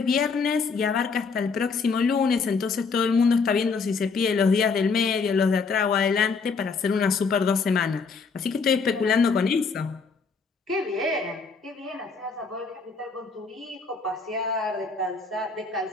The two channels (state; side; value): quieter; right; 4.9 dB